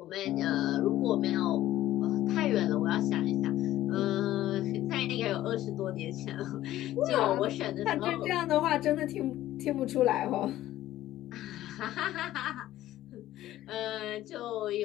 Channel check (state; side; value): quieter; right; 14.2 dB